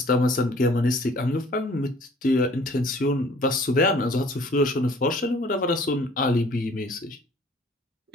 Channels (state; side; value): normal; both; correlation 0.54